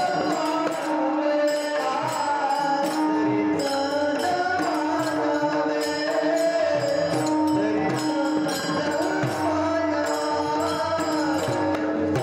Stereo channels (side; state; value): both; identical; correlation 1.00